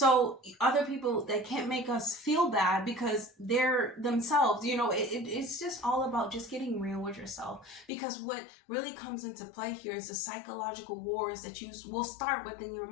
other people, they can't make us feel bad because they're themselves. You know, it's just all about just getting real with yourself. Because what really comes into play here is the psychological wars that you will start within your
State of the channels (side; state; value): right; drops out; at 7.9 s